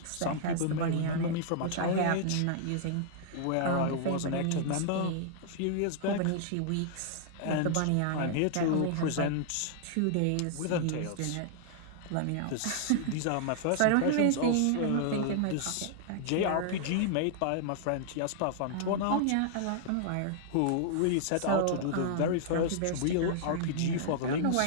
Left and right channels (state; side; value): different; both; correlation -0.01